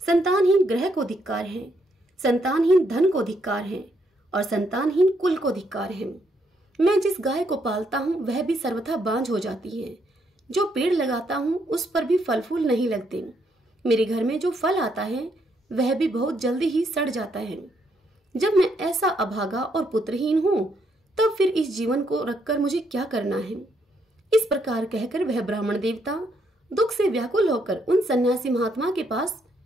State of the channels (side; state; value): both; normal; correlation 0.74